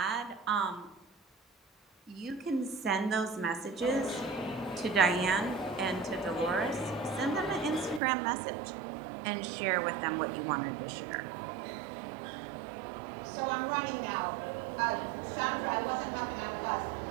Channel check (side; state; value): left; drops out; at 8.0 s